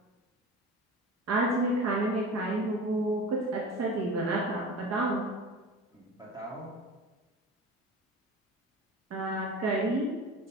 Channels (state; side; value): normal; both; correlation 0.34